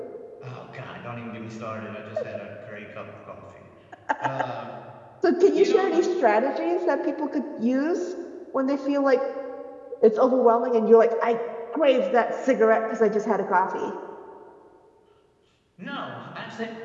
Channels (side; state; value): both; identical; correlation 1.00